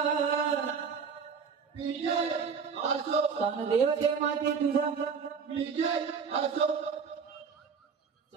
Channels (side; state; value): left; quieter; 5.9 dB